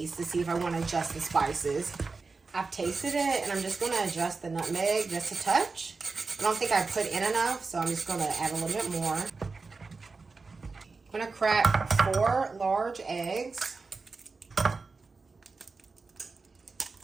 to see if I want to adjust the spices. I've tasted it and I'm just going to adjust the nutmeg just a touch. I don't think I put in enough, so I'm just going to add a little bit more. I'm going to crack 4 large eggs.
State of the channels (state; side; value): quieter; left; 4.2 dB